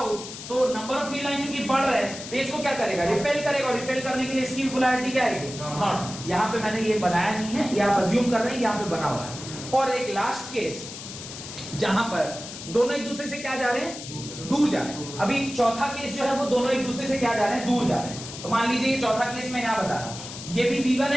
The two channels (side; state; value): left; noise; hiss, 11 dB below the sound